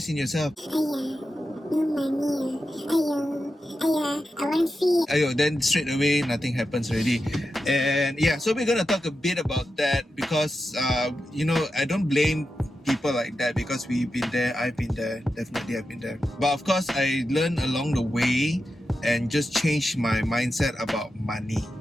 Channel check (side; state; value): both; normal; correlation 0.90